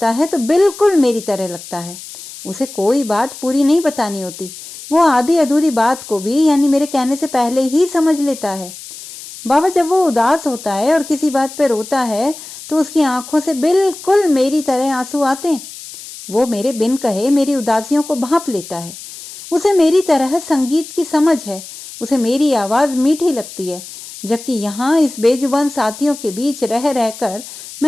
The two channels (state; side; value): noise; left; hiss, 14 dB below the sound